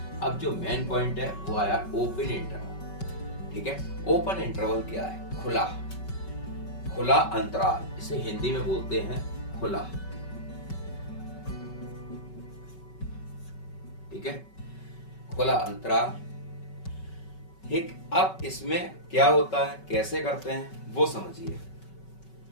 अब जो मेन पॉइंट है वो आया ओपन इंटरवल। ठीक है, ओपन इंटरवल क्या है? खुला अंतराल, इसे हिंदी में बोलते हैं खुला। ठीक है, खुला अंतराल। ठीक, अब इसमें क्या होता है, कैसे करते हैं वो समझिए।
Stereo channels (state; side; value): late; right; 5.3 ms